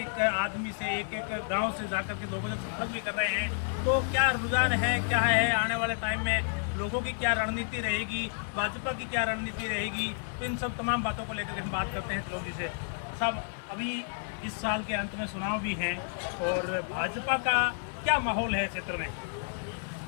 आदमी से एक एक गांव से जाकर के लोगों से संपर्क भी कर रहे हैं। तो क्या रुझान है, क्या है आने वाले टाइम में लोगों की क्या रणनीति रहेगी, भाजपा की क्या रणनीति रहेगी, तो इन सब तमाम बातों को लेकर हम बात करते हैं त्रिलोक जी से। साहब, अभी इस साल के अंत में चुनाव भी हैं और भाजपा का क्या माहौल है क्षेत्र में?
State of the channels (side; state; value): right; silent; digital silence